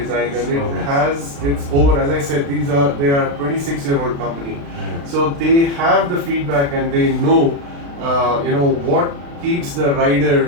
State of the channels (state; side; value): late; left; 36 ms